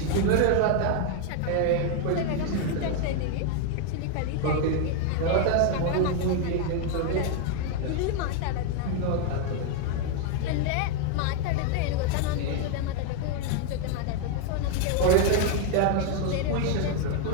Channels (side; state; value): both; different; correlation 0.01